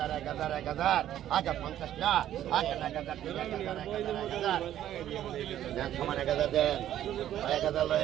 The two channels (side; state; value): left; quieter; 11.8 dB